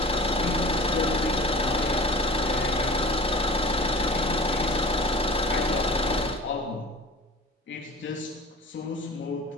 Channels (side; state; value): both; normal; correlation 0.40